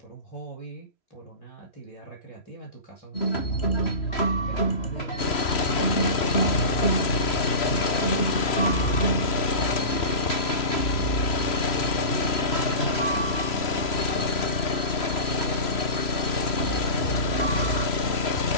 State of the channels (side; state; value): right; late; 3.0 ms